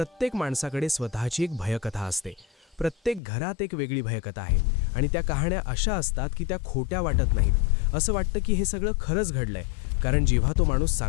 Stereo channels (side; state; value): right; drops out; at 3.2 s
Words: माणसाकडे स्वतःची एक भयकथा असते. प्रत्येक घरात एक वेगळी भयकथा आहे आणि त्या कहाण्या अशा असतात की त्या खोट्या वाटत नाहीत. असं वाटतं की हे सगळं खरंच घडलंय, कारण जेव्हा तो माणूस